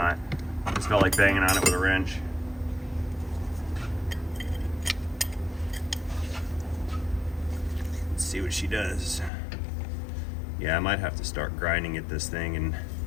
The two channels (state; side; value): drops out; right; at 9.3 s